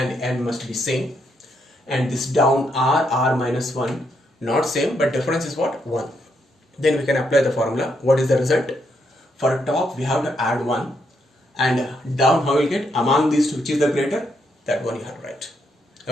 n must be same, and this down R minus 1 not same, but difference is what? 1. Then we can apply the formula. What is the result? For top we have to add 1, and down how we will get among these two which is the greater, that one you have to write.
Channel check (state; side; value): normal; both; correlation 0.77